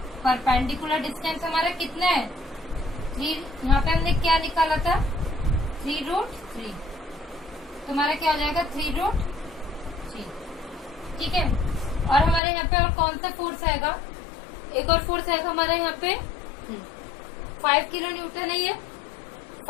परपेंडिकुलर डिस्टेंस हमारा कितना है 3, यहाँ पे हमने क्या निकाला था 3√3, तो हमारा क्या हो जाएगा 3√3। ठीक है, और हमारे यहाँ पे और कौन सा फोर्स आएगा, एक और फोर्स आएगा हमारे यहाँ पे 5 किलो न्यूटन है, ये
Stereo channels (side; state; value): right; drops out; at 12.4 s